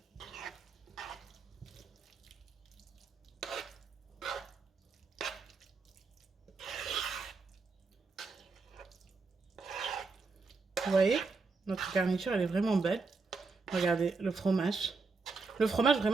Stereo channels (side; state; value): left; quieter; 4.2 dB